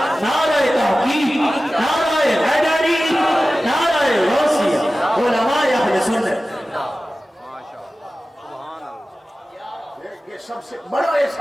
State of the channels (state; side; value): normal; both; correlation 0.95